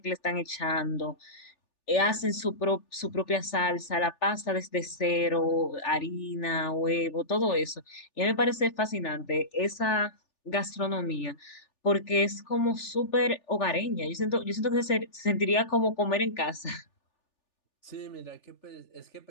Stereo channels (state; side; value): late; right; 3.4 ms